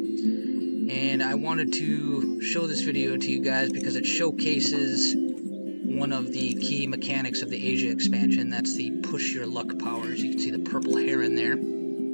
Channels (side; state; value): both; inverted; correlation -1.00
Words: And I wanted to show this video to you guys because it showcases one of the key mechanics of the Asia expansion. That's the push your luck powers. You can see the purple heron there.